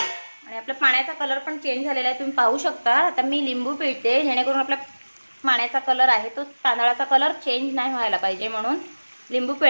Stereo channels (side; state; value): both; inverted; correlation -1.00